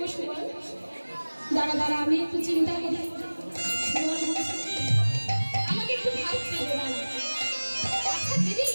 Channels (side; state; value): both; inverted; correlation -1.00